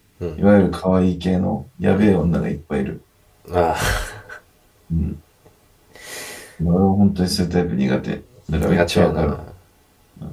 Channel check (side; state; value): both; identical; correlation 1.00